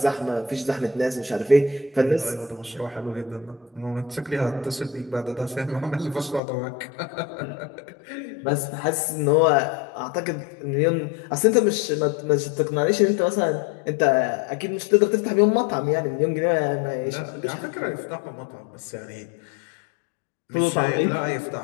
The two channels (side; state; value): right; drops out; at 6.4 s